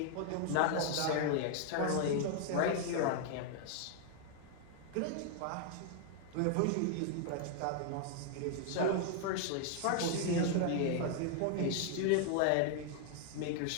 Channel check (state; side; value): different; both; correlation 0.00